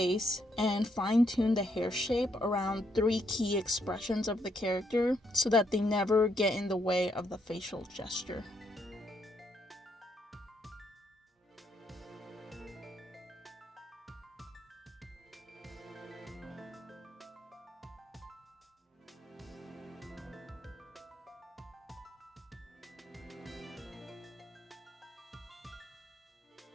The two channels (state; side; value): normal; both; correlation 0.75